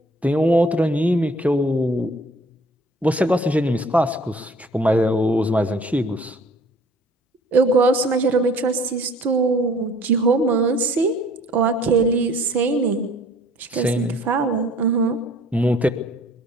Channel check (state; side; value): normal; both; correlation 0.54